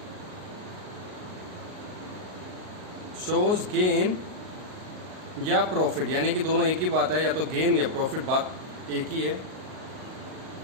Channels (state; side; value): late; left; 38 ms